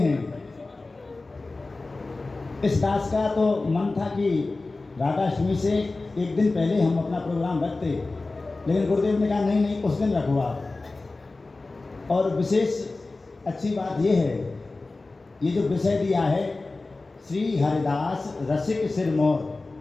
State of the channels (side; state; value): right; quieter; 3.4 dB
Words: इस दास का तो मन था कि राधाष्टमी से एक दिन पहले हम अपना प्रोग्राम रखते, लेकिन गुरुदेव ने कहा नहीं नहीं, उस दिन रखो आप। और विशेष अच्छी बात ये है, ये जो विषय दिया है श्री हरिदास रसिक सिरमौर,